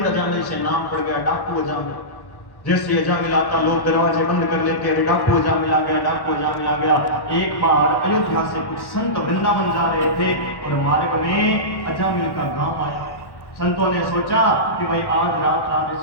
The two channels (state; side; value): late; right; 1.1 ms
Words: अजामिल से नाम पड़ गया डाकू अजामिल। जैसे अजामिल आता लोग दरवाजे बंद कर लेते, अरे डाकू अजामिल आ गया, डाकू अजामिल आ गया। एक बार अयोध्या से कुछ संत वृंदावन जा रहे थे और मार्ग में अजामिल का गांव आया। संतों ने सोचा कि भाई आज रात